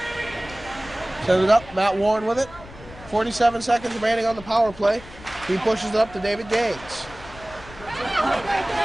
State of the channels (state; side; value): noise; left; rumble, 18 dB below the sound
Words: Send it up. Matt Warren with it. 47 seconds remaining on the power play. He pushes it up to David Gaines.